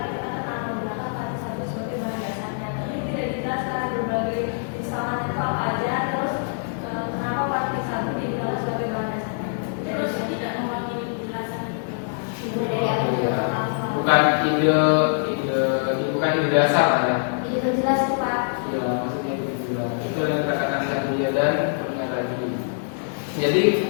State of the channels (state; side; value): silent; right; digital silence